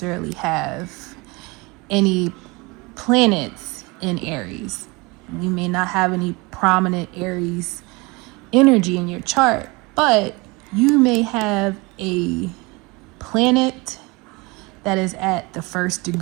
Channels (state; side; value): quieter; left; 25.7 dB